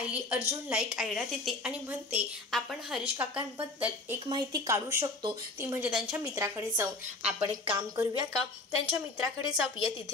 अर्जुनला एक आयडिया देते आणि म्हणते आपण हरीश काकांबद्दल एक माहिती काढू शकतो, ती म्हणजे त्यांच्या मित्राकडे जाऊन आपण एक काम करूया का, त्यांच्या मित्राकडे जाऊया,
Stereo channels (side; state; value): right; quieter; 3.1 dB